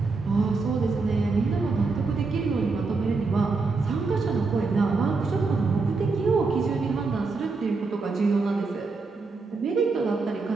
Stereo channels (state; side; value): quieter; left; 4.1 dB